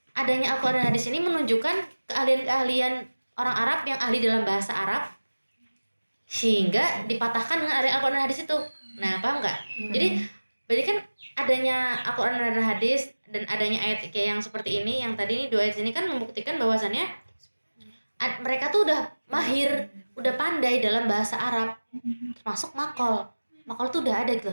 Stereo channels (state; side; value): inverted; both; correlation -1.00